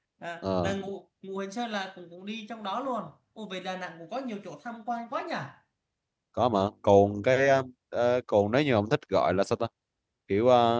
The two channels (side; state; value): both; identical; correlation 1.00